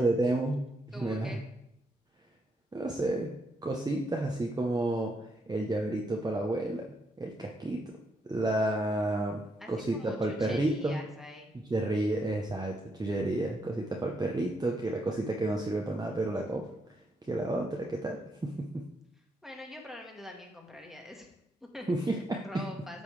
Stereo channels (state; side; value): normal; both; correlation 0.77